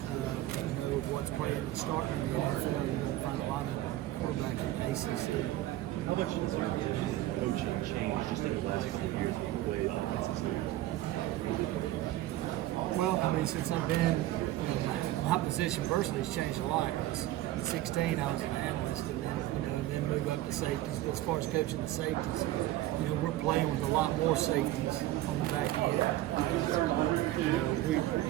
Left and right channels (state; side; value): quieter; left; 15.3 dB